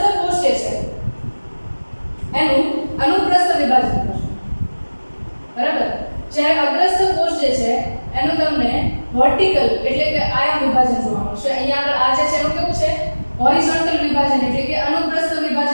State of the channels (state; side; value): inverted; both; correlation -1.00